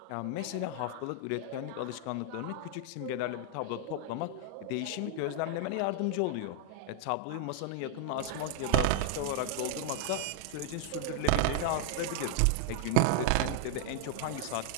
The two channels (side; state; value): both; different; correlation 0.00